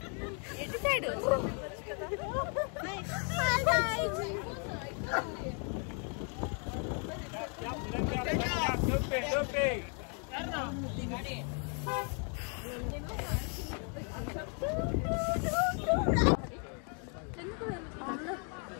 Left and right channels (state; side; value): quieter; right; 39.7 dB